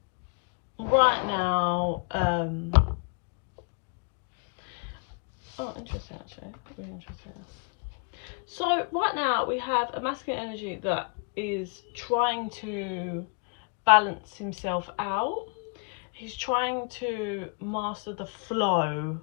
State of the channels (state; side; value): quieter; right; 37.7 dB